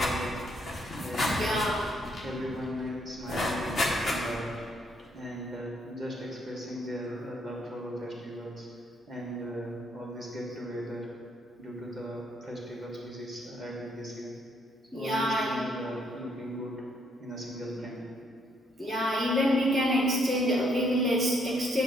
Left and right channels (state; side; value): normal; both; correlation 0.70